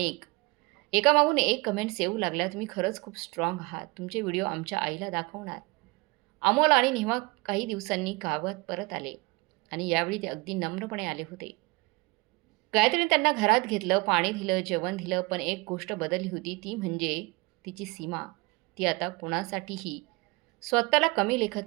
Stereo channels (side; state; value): left; quieter; 25.6 dB